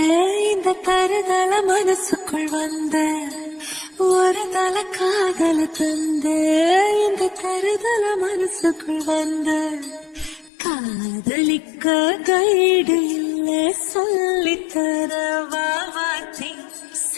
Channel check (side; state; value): right; drops out; at 10.5 s